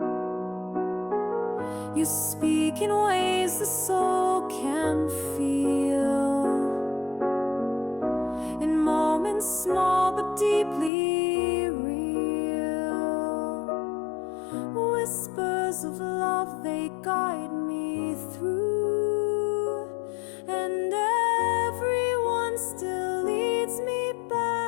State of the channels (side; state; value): right; drops out; at 10.9 s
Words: You speak in ways the soul can feel, in moments small but deeply real. Whispers of love, they guide me through, and everyone still leads me